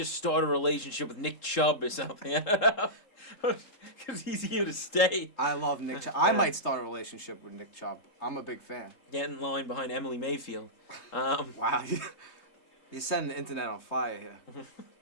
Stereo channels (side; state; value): right; late; 3.7 ms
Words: start a relationship with Nick Chubb or something. Because he's here to stay. I love Nick Chubb. I might start a relationship with Nick Chubb. I'm a big fan. Get in line behind Emily Mayfield. Wow. You're setting the internet on fire here.